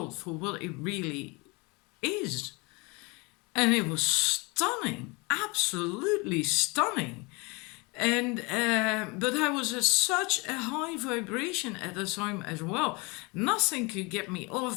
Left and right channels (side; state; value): right; quieter; 27.8 dB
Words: for what it really is. And it was stunning, absolutely stunning. And but I was at such a high vibration at the time as well. Nothing could get me